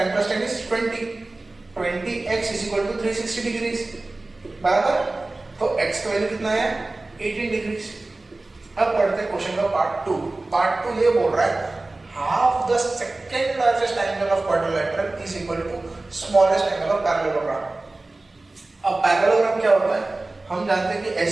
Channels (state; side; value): quieter; left; 3.0 dB